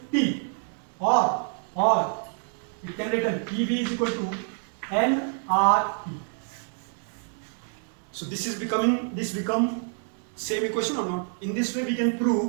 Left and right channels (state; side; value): silent; left; 60 dB below the other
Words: or you can write PV is equal to nRT. So this become same equation or not? In this way we can